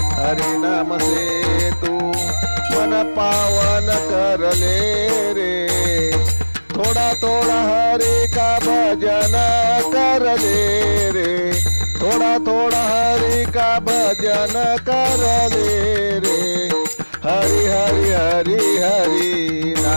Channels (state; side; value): inverted; both; correlation -1.00